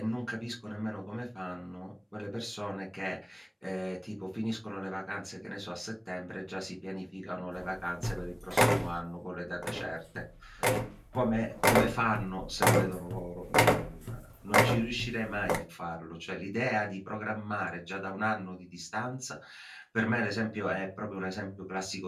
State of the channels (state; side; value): identical; both; correlation 1.00